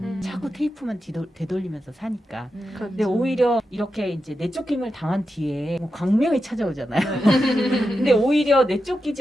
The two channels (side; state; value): both; normal; correlation 0.89